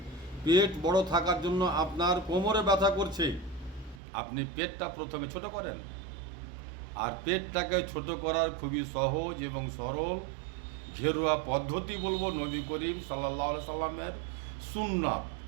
পেট বড় থাকার জন্য আপনার কোমরে ব্যথা করছে। আপনি পেটটা প্রথমে ছোট করেন, আর পেটটাকে ছোট করার খুবই সহজ এবং সরল ঘেরুয়া পদ্ধতি বলবো নবী করিম সাল্লাল্লাহু আলাইহি সাল্লামের সুন্নাত।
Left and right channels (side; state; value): left; drops out; at 4.0 s